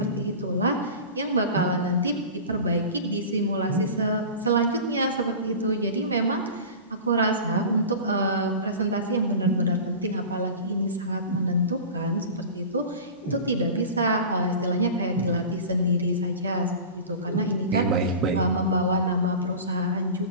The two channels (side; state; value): both; inverted; correlation -0.34